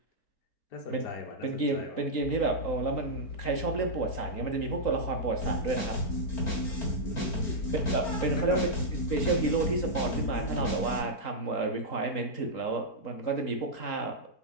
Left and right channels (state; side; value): late; right; 4.4 ms